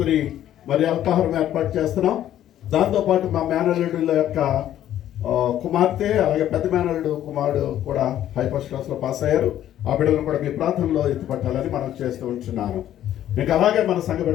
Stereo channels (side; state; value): right; quieter; 11.8 dB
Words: మరి అల్పాహారం ఏర్పాటు చేస్తున్నాం. దాంతోపాటు మా మేనల్లుడుల యొక్క కుమార్తె అలాగే పెద్ద మేనల్లుడు కుమారుడు కూడా హై ఫస్ట్ క్లాస్లో పాస్ అయ్యారు. ఆ బిడ్డలను కూడా మీ ప్రాంతంలో ఎత్తుపట్టాలని మనం చేస్తూ ఉంటున్నాను. ఇంకా అలాగే మన సంఘ